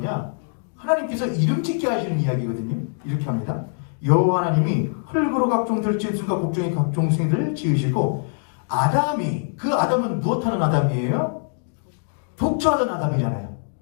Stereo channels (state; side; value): silent; right; digital silence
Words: 하나님께서 이름 짓게 하시는 이야기거든요. 이렇게 합니다. 여호와 하나님이 흙으로 각종 들짐승과 곡종의 각종 생들을 지으시고 아담이, 그 아담은 무엇하는 아담이에요? 독처하던 아담이잖아요.